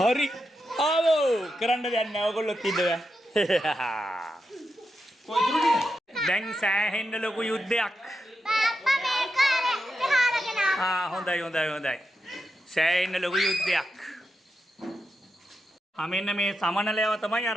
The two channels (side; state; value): both; normal; correlation 0.87